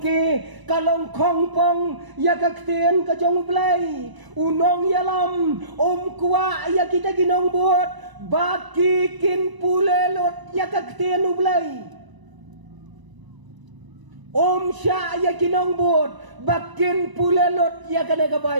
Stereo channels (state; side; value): late; left; 1.0 ms